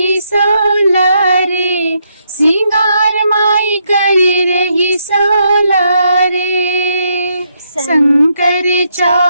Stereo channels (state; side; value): inverted; both; correlation -0.77